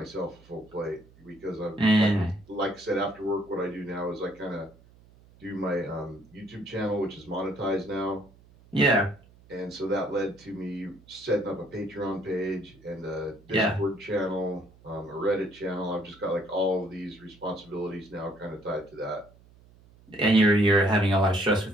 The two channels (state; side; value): noise; right; hum, 26 dB below the sound